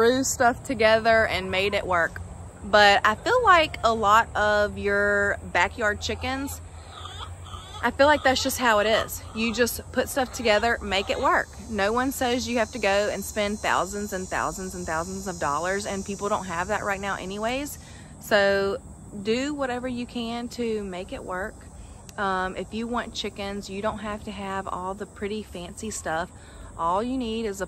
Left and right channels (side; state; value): both; identical; correlation 1.00